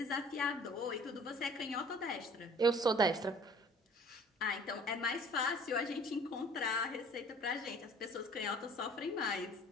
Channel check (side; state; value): both; normal; correlation 0.50